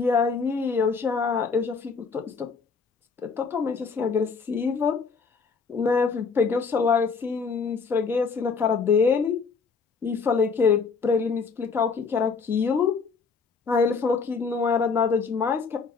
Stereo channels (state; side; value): quieter; right; 5.1 dB